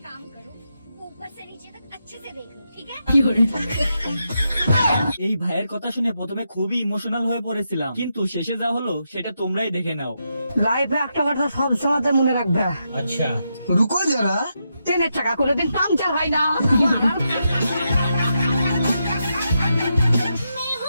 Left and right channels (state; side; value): inverted; both; correlation -0.84